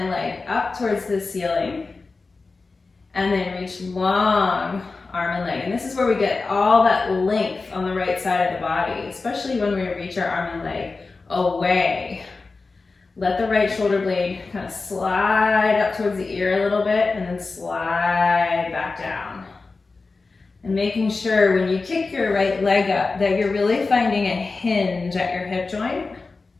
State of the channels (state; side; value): quieter; right; 3.9 dB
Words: leg up towards the ceiling. And then reach long arm and leg. And this is where we get all that length on the right side of the body, especially when we reach our arm and leg away. Let the right shoulder blade kind of slide up towards the ear a little bit and then slide back down. And making sure when you kick your right leg up that you're really finding a hinge at your hip joint.